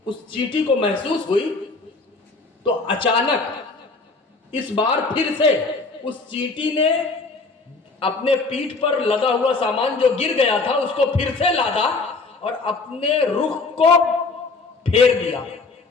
اس چینٹی کو محسوس ہوئی تو اچانک اس بار پھر سے اس چینٹی نے اپنے پیٹھ پر لدا ہوا سامان جو گر گیا تھا اس کو پھر سے لادا اور اپنے رخ کو پھیر دیا.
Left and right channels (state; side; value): quieter; right; 3.9 dB